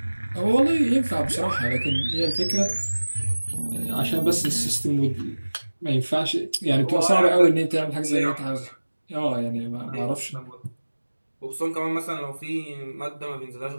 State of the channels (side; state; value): both; inverted; correlation -1.00